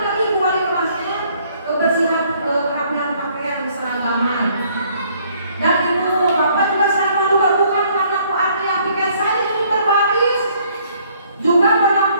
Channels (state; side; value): inverted; both; correlation -0.63